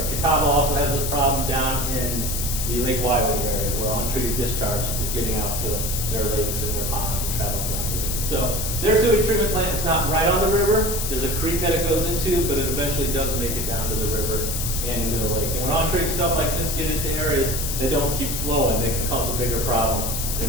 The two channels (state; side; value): noise; left; hiss, 3 dB below the sound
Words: Catawba also has a problem down in the Lake Wiley area where untreated discharge is getting out to their lakes and their ponds and traveling down the river. So their sewage treatment plant is not right on the river. There's a creek that it goes into, but it eventually does make it down to the river and into the lake. And when untreated stuff like this get into areas that don't keep flowing, they can cause a bigger problem